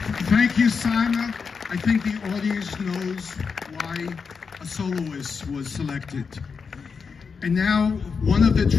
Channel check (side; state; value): right; quieter; 5.5 dB